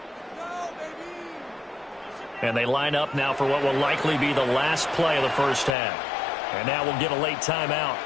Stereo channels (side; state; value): right; drops out; at 5.8 s